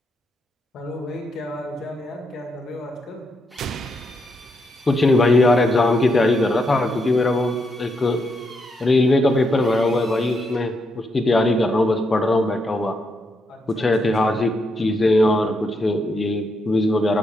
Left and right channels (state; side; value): normal; both; correlation 0.80